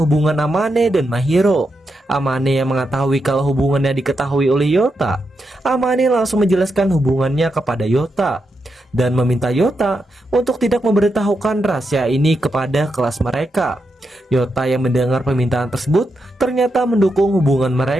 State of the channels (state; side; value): normal; both; correlation 0.85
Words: hubungan Amane dan Mahiro. Amane yang mengetahui kalau hubungannya diketahui oleh Yota, Amane langsung menjelaskan hubungannya kepada Yota dan meminta Yota untuk tidak memberitahukan rahasia ini kepada kelas mereka. Yota yang mendengar permintaan tersebut ternyata mendukung hubungan